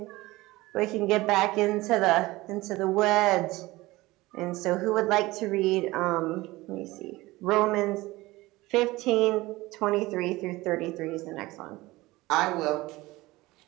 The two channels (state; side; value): quieter; left; 19.8 dB